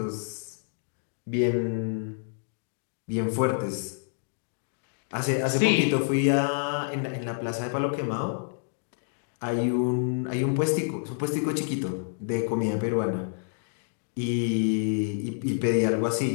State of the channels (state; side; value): silent; right; digital silence